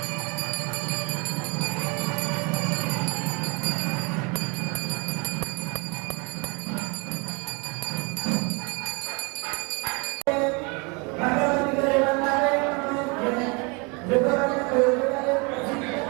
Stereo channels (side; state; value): left; quieter; 30.7 dB